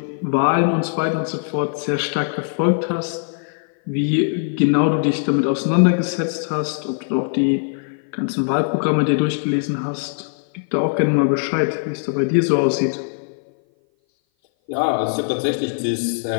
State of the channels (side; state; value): right; silent; 58 dB below the other